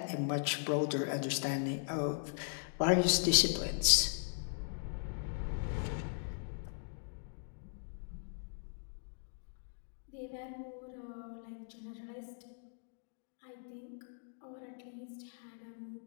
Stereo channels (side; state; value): right; silent; digital silence